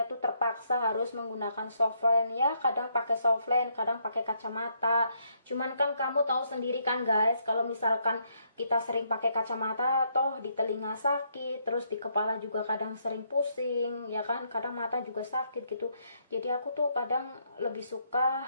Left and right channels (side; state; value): both; inverted; correlation -0.74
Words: tuh terpaksa harus menggunakan softland ya. Kadang pakai softland, kadang pakai kacamata. Cuman kan kamu tahu sendiri kan guys, kalau misalkan kita sering pakai kacamata, toh di telinga sakit, terus di kepala juga kadang sering pusing, ya kan? Kadang mata juga sakit gitu. Jadi aku tuh kadang lebih suka